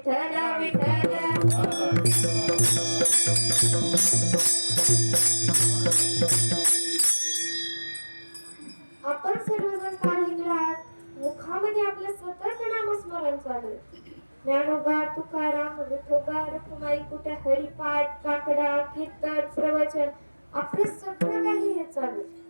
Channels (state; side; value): inverted; both; correlation -1.00